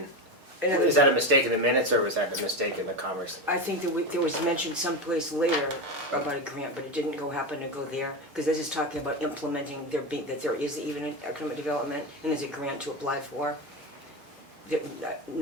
And is that a mistake in the minutes, or was that a mistake in the commerce? I think that there was mentioned someplace later about a grant, but it didn't happen to go there, because this is talking about implementing that there is even an economic development, and there's a grant to apply for.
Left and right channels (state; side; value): late; left; 6.5 ms